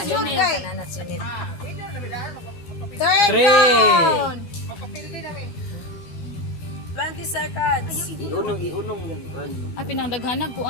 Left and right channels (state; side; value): late; right; 12 ms